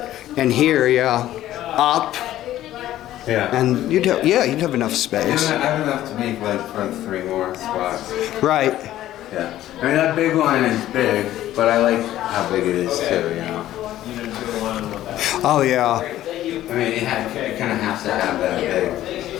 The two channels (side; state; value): right; quieter; 13.6 dB